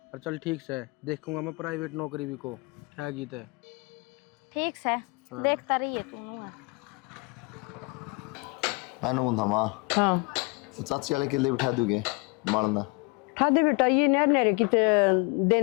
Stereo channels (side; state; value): right; quieter; 28.4 dB